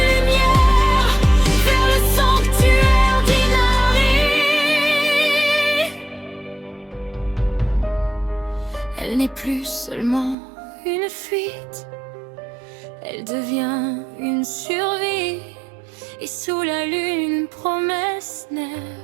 lumière, vers le sanctuaire d'Inari. Elle n'est plus seulement une fuite, elle devient une survie. Et sous la lune, une promesse naît.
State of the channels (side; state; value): left; drops out; at 10.4 s